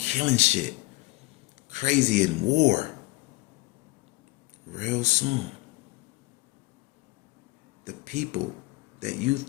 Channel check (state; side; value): quieter; right; 21.1 dB